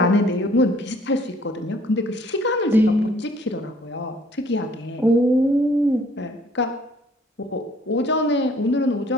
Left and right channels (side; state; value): both; normal; correlation 0.58